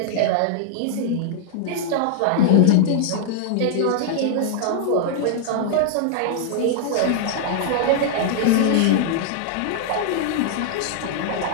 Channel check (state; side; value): different; both; correlation -0.01